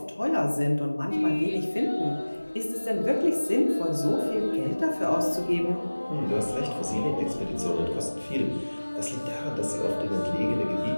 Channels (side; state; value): both; inverted; correlation -1.00